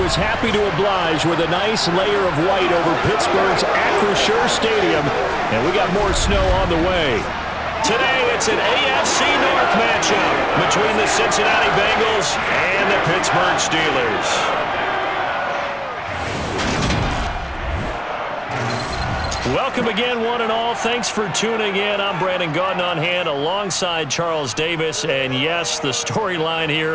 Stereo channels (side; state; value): both; identical; correlation 1.00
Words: was happy to oblige with a nice layer of white over Pittsburgh's Acrisure Stadium, and we got more snow on the way. Today, it's an AFC North matchup between the Cincinnati Bengals and the Pittsburgh Steelers. Welcome again, one and all. Thanks for tuning in. I'm Brandon Gaudin on hand alongside Charles Davis. And yes, the storyline